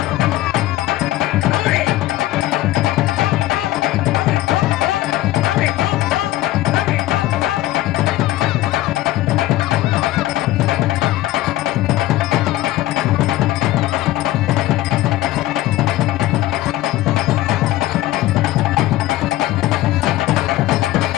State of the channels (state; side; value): quieter; right; 15.7 dB